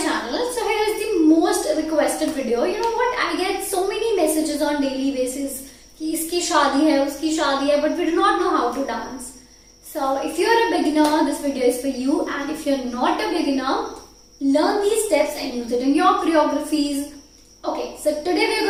channel. So here is the most requested video. You know what? I get so many messages on daily basis कि इसकी शादी है, उसकी शादी है, but we do not know how to dance. So if you are a beginner, this video is for you. And if you are not a beginner, learn these steps and use it in your choreographies. Okay, so today we are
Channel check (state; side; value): identical; both; correlation 1.00